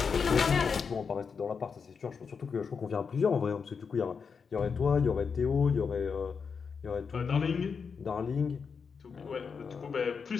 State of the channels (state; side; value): quieter; right; 5.8 dB